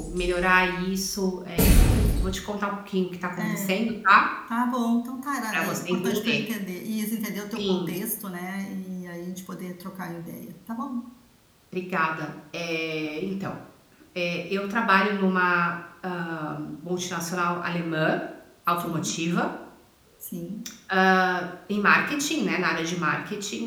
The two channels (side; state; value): both; identical; correlation 1.00